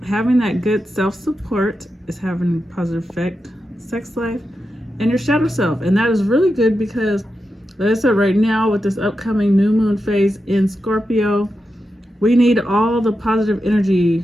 having that good self-support is having a positive effect, sex life, and your shadow self. And that is really good because, like I said, right now with this upcoming new moon phase in Scorpio, we need all the positive energy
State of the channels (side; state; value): both; normal; correlation 0.89